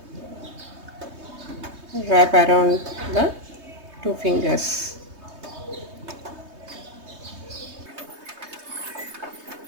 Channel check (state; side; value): late; left; 3.2 ms